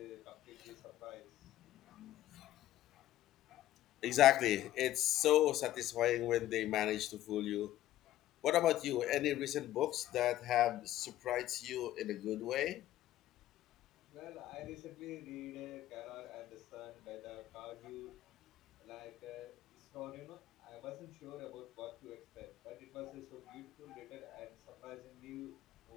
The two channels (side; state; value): right; quieter; 13.9 dB